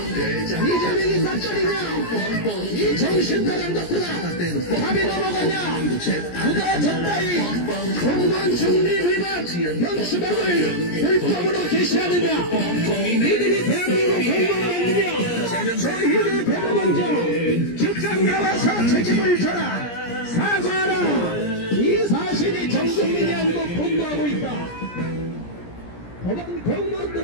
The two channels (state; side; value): late; right; 17 ms